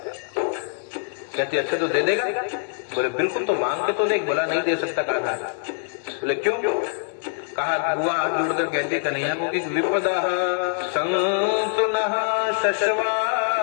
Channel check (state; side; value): silent; right; 63 dB below the other